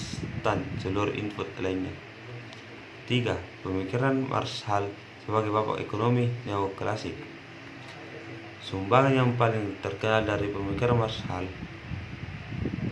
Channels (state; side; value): identical; both; correlation 1.00